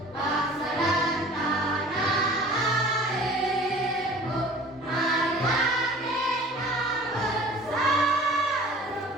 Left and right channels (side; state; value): both; normal; correlation 0.46